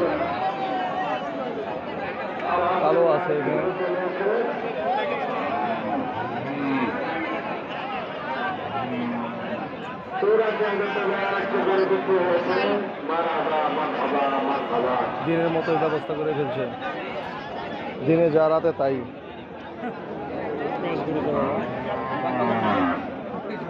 কালো আছে এখানে। দিনের মতো ব্যবস্থা করে ফেলছে, দিনে যা রাতে তাই।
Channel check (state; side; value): identical; both; correlation 1.00